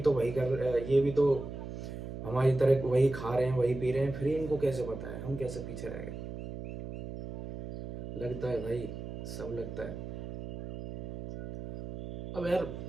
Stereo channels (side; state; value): right; noise; hum, 8 dB below the sound